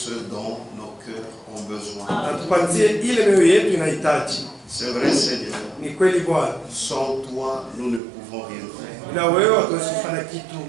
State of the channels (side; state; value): left; drops out; at 8.0 s